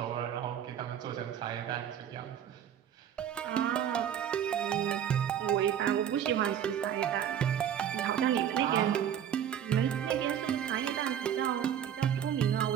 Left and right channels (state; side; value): quieter; left; 9.5 dB